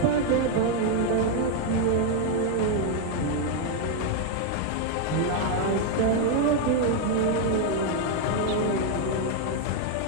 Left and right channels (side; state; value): both; different; correlation 0.01